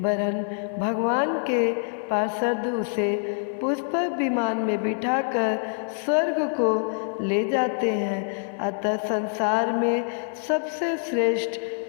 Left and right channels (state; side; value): silent; right; digital silence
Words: भगवान के पार्षद उसे पुष्पक विमान में बिठाकर स्वर्ग को ले जाते हैं। अतः संसार में सबसे श्रेष्ठ